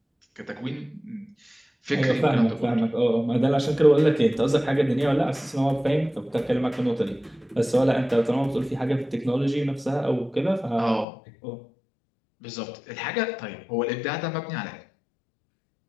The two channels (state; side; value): drops out; right; at 11.1 s